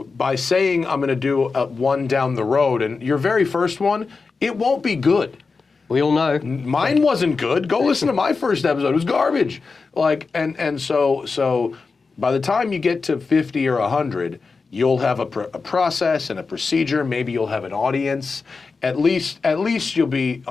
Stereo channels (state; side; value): quieter; right; 4.5 dB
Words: by saying I'm going to do one down the road and your very first one, it won't be good. We all know. Mine wasn't good. Go listen to my first episode. It was garbage. So by the time you get to 50 or 100, you'll have a process and a procedure. Maybe you'll have an audience. At least you'll be